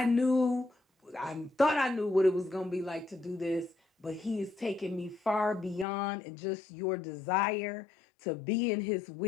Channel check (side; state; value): right; drops out; at 5.9 s